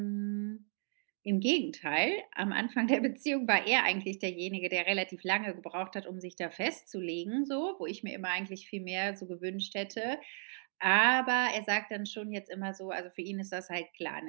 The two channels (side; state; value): left; silent; 55 dB below the other